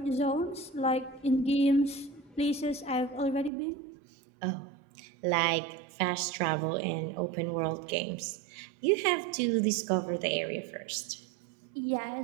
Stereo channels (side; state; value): left; drops out; at 3.5 s